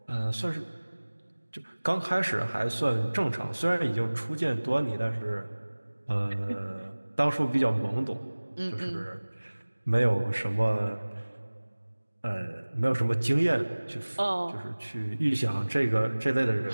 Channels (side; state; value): both; inverted; correlation -1.00